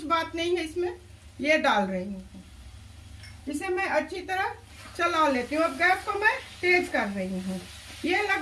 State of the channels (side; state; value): both; identical; correlation 1.00